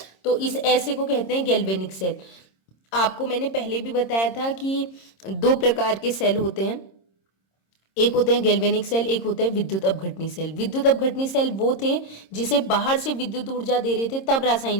तो इस ऐसे को कहते हैं गैल्वेनिक सेल। आपको मैंने पहले भी बताया था कि दो प्रकार के सेल होते हैं, एक होते हैं गैल्वेनिक सेल, एक होता है विद्युत अपघटनी सेल। विद्युत अपघटनी सेल वो थे जिसे बाहर से विद्युत ऊर्जा दे रहे थे, तब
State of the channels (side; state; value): right; late; 26 ms